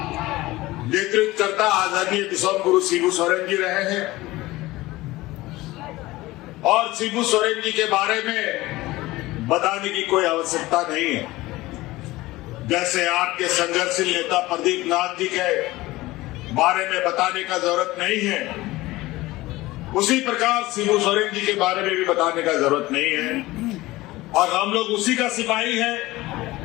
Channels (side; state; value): right; quieter; 18.8 dB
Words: नेतृत्व करता आदरणीय विश्व गुरु शिबू सोरेन जी रहे हैं और शिबू सोरेन जी के बारे में बताने की कोई आवश्यकता नहीं है। जैसे आपके संघर्षशील नेता प्रदीप नाथ जी के बारे में बताने का जरूरत नहीं है, उसी प्रकार शिबू सोरेन जी के बारे में भी बताने का जरूरत नहीं है। और हम लोग उसी का सिपाही हैं